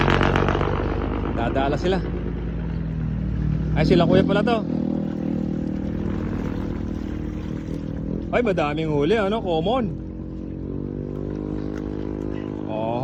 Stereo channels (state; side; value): identical; both; correlation 1.00